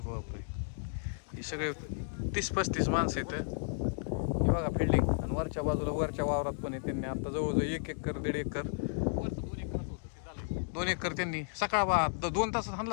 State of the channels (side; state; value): right; silent; digital silence